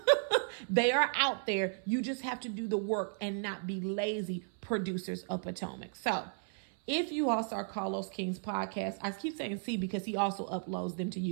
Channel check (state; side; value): silent; left; 55 dB below the other